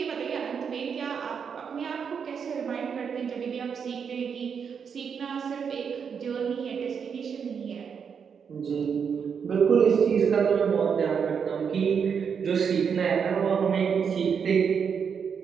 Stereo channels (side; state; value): left; quieter; 6.7 dB